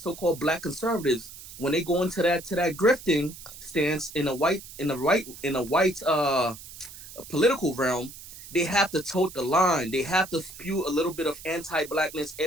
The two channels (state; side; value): noise; right; hiss, 15 dB below the sound